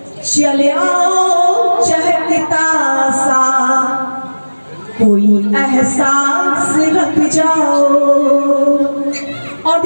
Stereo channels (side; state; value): both; inverted; correlation -1.00